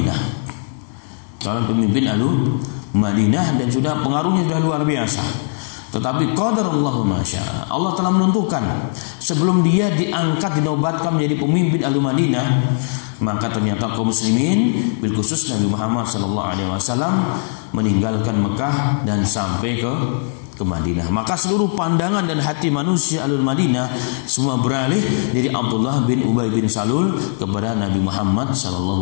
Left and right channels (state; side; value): silent; right; digital silence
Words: dan sudah pengaruhnya sudah luar biasa. Tetapi qadarullahu ma syaa, Allah telah menentukan sebelum dia diangkat, dinobatkan menjadi pemimpin Al-Madinah, maka ternyata kaum muslimin bil khusus Nabi Muhammad sallallahu alaihi wasallam meninggalkan Mekah dan sampai ke ke Madinah. Maka seluruh pandangan dan hati manusia Ahlul Madinah semua beralih dari Abdullah bin Ubay bin Salul kepada Nabi Muhammad